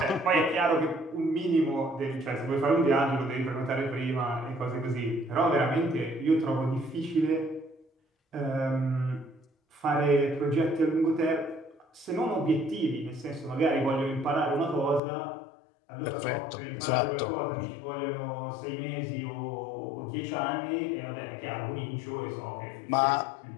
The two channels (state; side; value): drops out; right; at 15.0 s